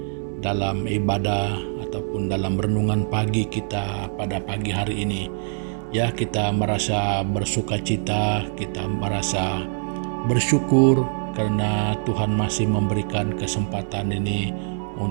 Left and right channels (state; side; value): silent; left; digital silence